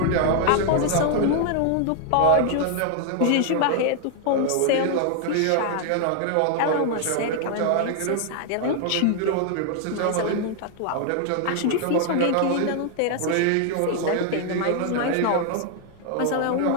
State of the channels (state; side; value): different; both; correlation 0.00